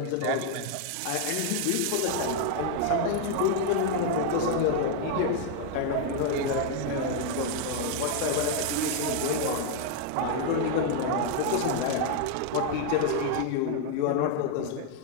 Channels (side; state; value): both; different; correlation 0.00